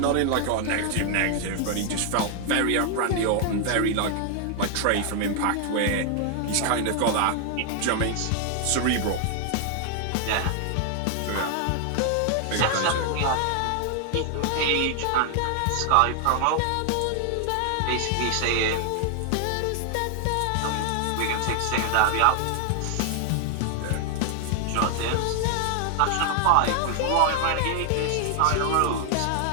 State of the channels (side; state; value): both; different; correlation 0.00